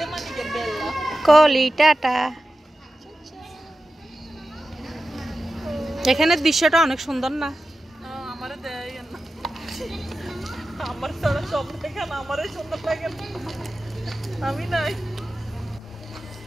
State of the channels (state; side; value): normal; both; correlation 0.93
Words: মানে কে বেলা কলি টাটা। এখানে দৃশ্যটা অনেক সুন্দর না? আমারে দেয় না, আমার সারা সব দেখে না, আমারে সুন্দর লাগে না, আমি নাই।